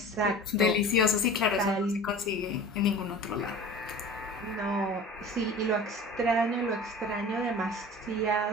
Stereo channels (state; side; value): normal; both; correlation 0.39